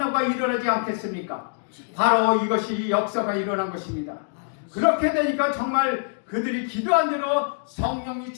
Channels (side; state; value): right; silent; digital silence